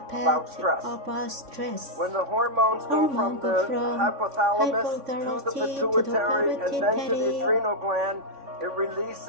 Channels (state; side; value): late; left; 3.6 ms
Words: about stress. When the hormones go from the hypothalamus to the pituitary and then to the adrenal gland, it